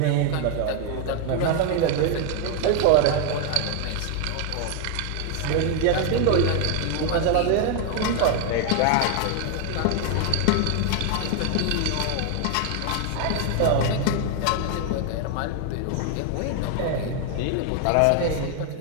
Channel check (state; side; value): different; both; correlation 0.01